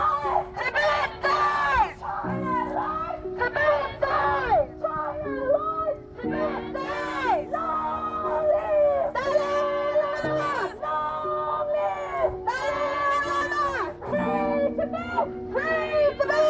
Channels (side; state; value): both; identical; correlation 1.00